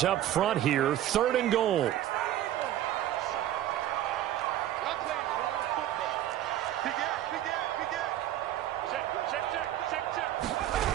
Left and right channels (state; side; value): quieter; left; 12.8 dB